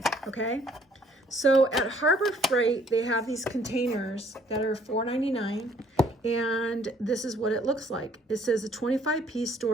okay? So at Harbor Freight, they have these containers that are $4.99, and this is what it looks like. It says a 25-piece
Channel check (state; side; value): normal; both; correlation 0.61